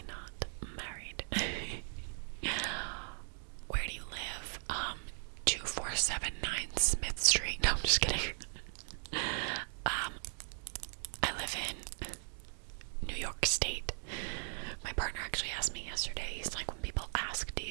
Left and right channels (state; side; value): silent; left; digital silence